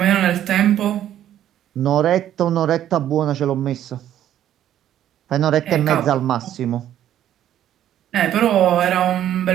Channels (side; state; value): left; quieter; 11.4 dB